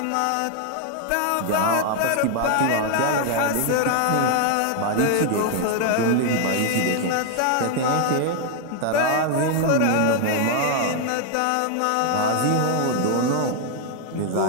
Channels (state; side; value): different; both; correlation 0.00